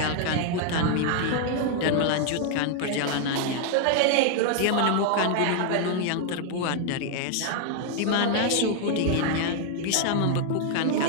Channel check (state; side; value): different; both; correlation 0.00